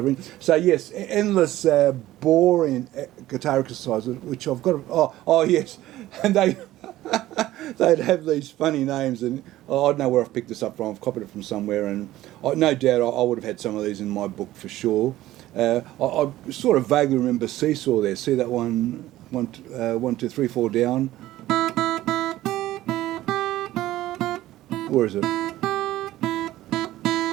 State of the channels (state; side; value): quieter; left; 15.3 dB